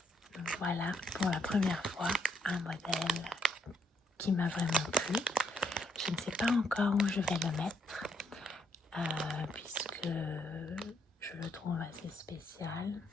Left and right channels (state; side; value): normal; both; correlation 0.73